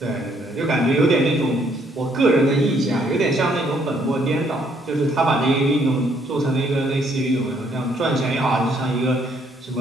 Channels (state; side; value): normal; both; correlation 0.67